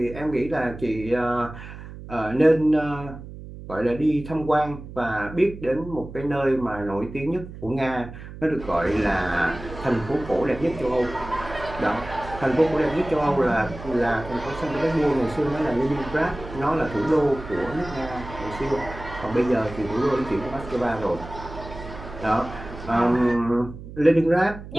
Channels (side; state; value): right; noise; hum, 13 dB below the sound